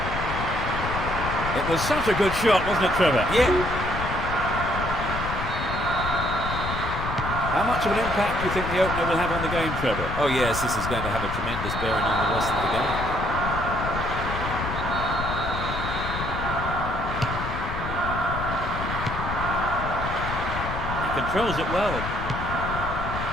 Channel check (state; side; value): noise; left; rumble, 5 dB below the sound